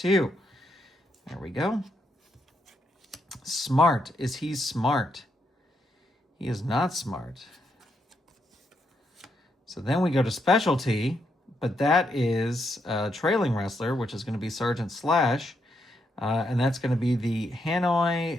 There we go. Smart. Is he smart? He is not smart. So then we go to specialty, but that is trailing wrestler, which is going to be Sergeant Slash. And that's going to be the Hanoi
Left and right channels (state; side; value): normal; both; correlation 0.79